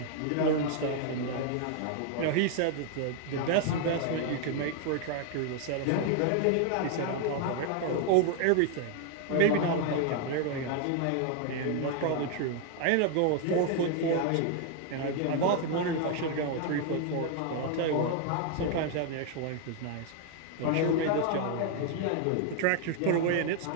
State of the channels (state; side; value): different; both; correlation 0.00